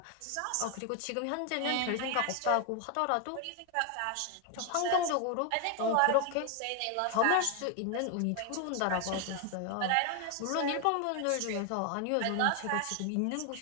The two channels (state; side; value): different; both; correlation 0.00